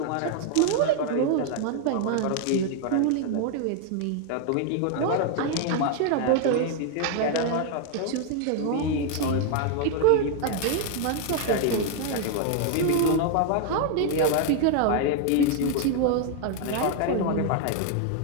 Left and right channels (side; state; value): both; different; correlation 0.00